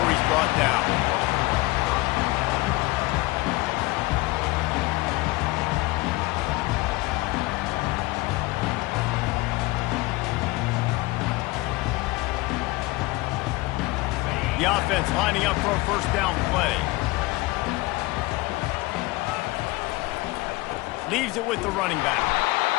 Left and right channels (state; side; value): quieter; right; 21.7 dB